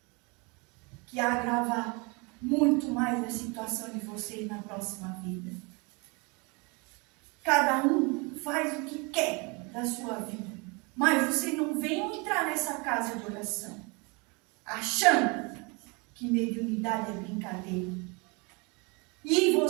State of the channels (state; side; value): quieter; left; 29.6 dB